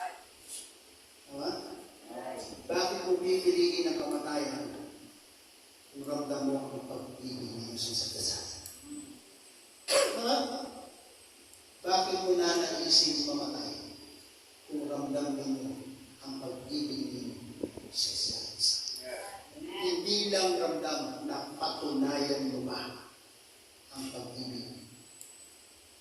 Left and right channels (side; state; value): both; identical; correlation 1.00